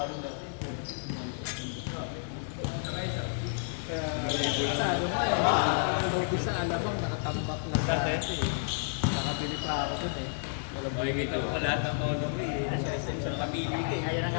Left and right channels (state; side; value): silent; right; digital silence